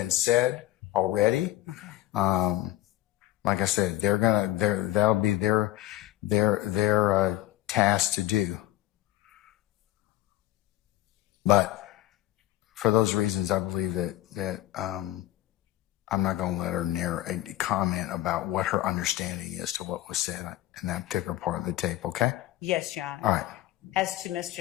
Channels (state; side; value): quieter; right; 15.7 dB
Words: said already. Okay. Like I said, that'll be their task to do. But for those reasons, I believe that I'm not going to let her comment about what her understanding is to what was said in that particular part of the tape. Okay? Yes, Your Honor. All right. As to